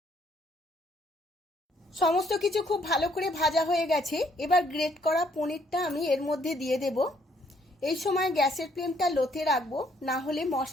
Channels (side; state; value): both; normal; correlation 0.67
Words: সমস্ত কিছু খুব ভালো করে ভাজা হয়ে গেছে। এবার গ্রেট করা পনিরটা আমি এর মধ্যে দিয়ে দেব। এই সময় গ্যাসের ফ্লেমটা লোতে রাখবো, না হলে